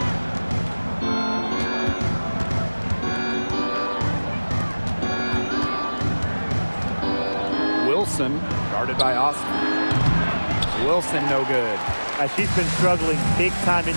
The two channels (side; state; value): both; inverted; correlation -1.00